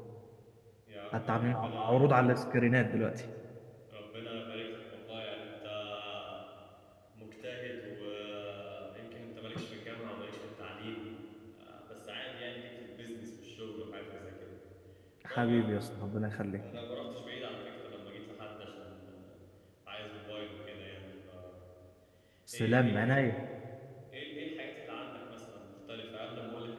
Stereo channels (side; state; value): both; identical; correlation 1.00